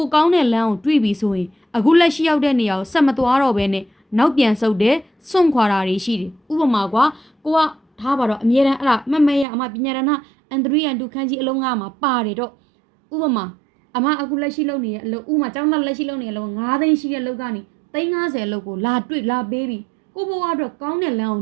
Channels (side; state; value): left; drops out; at 9.5 s